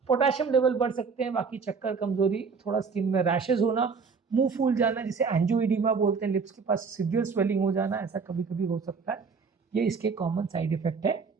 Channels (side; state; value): left; quieter; 5.2 dB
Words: पोटेशियम लेवल बढ़ सकते हैं, बाकी चक्कर, कमजोरी, थोड़ा स्किन में रैशेज होना, मुंह फूल जाना जिसे एंजियोइडिमा बोलते हैं, लिप्स के पास सीवियर स्वेलिंग हो जाना, ऐसा कभी कभी हो सकता है। ये इसके कॉमन साइड इफेक्ट है।